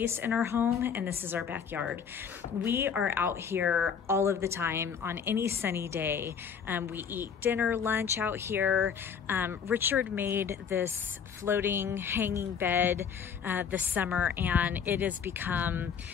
in our home, and this is our backyard. We are out here all of the time on any sunny day. We eat dinner, lunch out here. Richard made this floating hanging bed this summer, and it has become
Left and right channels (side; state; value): right; quieter; 7.1 dB